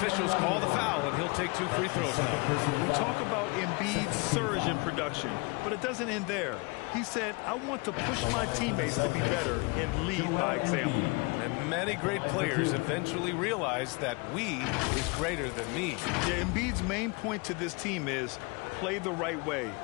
call the foul, and he'll take 2 free throws now. We talk about Embiid's surge in production, but it doesn't end there. He said, I want to push my teammates to be better and lead by example. And many great players eventually realize that we is greater than me. Yeah, Embiid's main point to this team is play the right way,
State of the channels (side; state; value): right; quieter; 28.8 dB